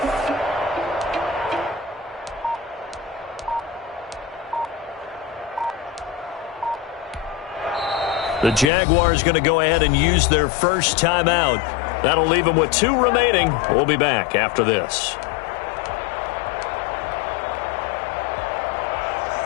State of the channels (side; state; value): right; drops out; at 8.7 s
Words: The Jaguars going to go ahead and use their first timeout. That'll leave them with 2 remaining. We'll be back after this.